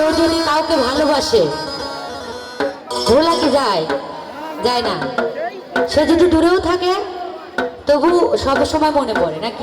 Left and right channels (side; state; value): both; identical; correlation 1.00